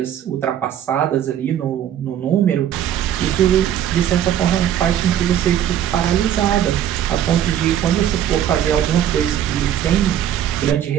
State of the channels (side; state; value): left; quieter; 10.5 dB